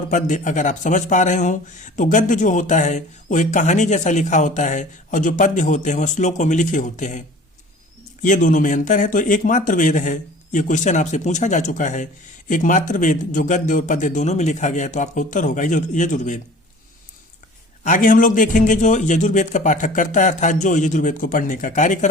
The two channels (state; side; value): normal; both; correlation 0.45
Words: पद्य अगर आप समझ पा रहे हो, तो गद्य जो होता है वो एक कहानी जैसा लिखा होता है और जो पद्य होते हैं वो श्लोकों में लिखे होते हैं। ये दोनों में अंतर है। तो एकमात्र वेद है, ये क्वेश्चन आपसे पूछा जा चुका है, एकमात्र वेद जो गद्य और पद्य दोनों में लिखा गया है, तो आपका उत्तर होगा यजुर्वेद। आगे हम लोग देखेंगे जो यजुर्वेद का पाठक करता है, अर्थात जो यजुर्वेद को पढ़ने का कार्य